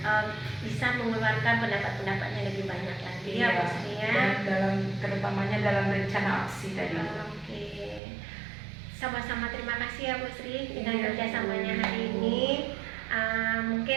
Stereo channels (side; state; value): left; drops out; at 8.0 s